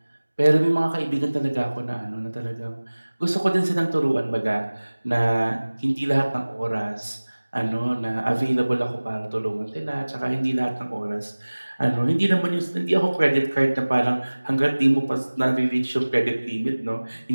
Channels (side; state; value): both; inverted; correlation -1.00